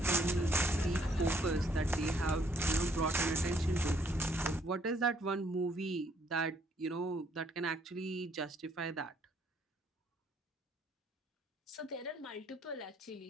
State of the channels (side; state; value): both; normal; correlation 0.66